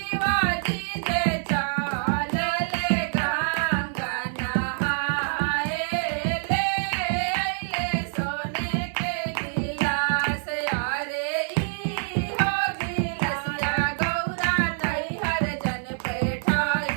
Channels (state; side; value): silent; left; 55 dB below the other